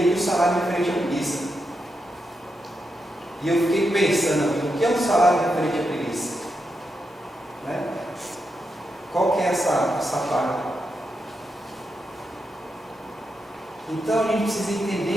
que o salário referente à preguiça. E eu fiquei pensando, o que é um salário referente à preguiça? Né? Qual que é essa parte? Então a gente precisa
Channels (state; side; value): normal; both; correlation 0.85